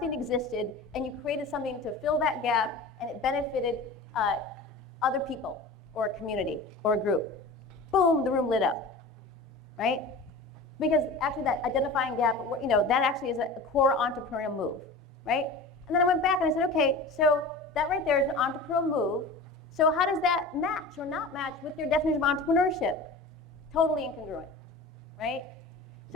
existed, and you created something to fill that gap, and it benefited other people, or a community, or a group. Boom, the room lit up, right? Because actually that identifying gap, you know, that actually is a core entrepreneurial move, right? And then I went back and I said, okay, so that right there is an entrepreneurial move. So how does that match or not match with your definition of entrepreneurship? Totally incongruent, right?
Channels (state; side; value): quieter; right; 3.1 dB